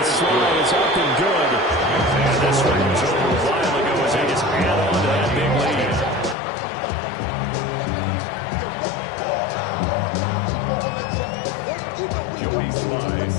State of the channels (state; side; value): drops out; right; at 6.4 s